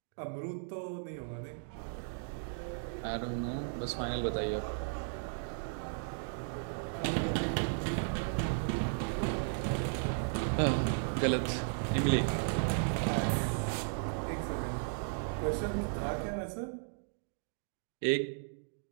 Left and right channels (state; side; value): silent; left; digital silence